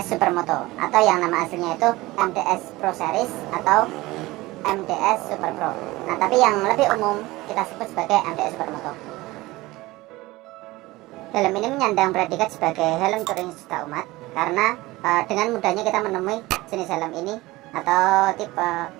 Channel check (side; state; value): left; quieter; 19.7 dB